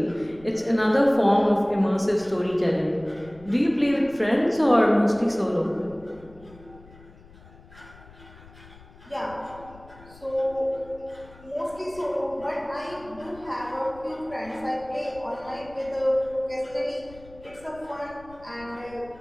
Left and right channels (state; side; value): noise; left; rumble, 22 dB below the sound